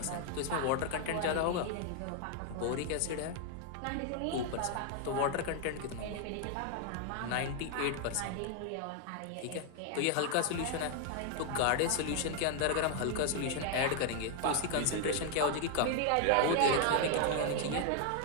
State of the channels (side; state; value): both; different; correlation 0.00